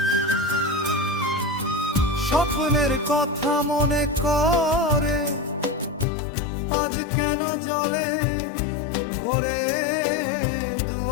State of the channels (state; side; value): drops out; right; at 6.1 s